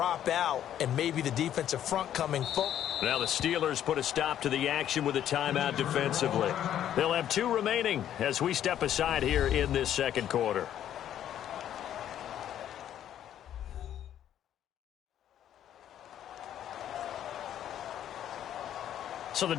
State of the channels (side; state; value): right; quieter; 10.8 dB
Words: out and maybe the defensive front coming full. Now the Steelers put a stop to the action with a timeout defensively. They'll have 2 remaining as we step aside here in this second quarter. So the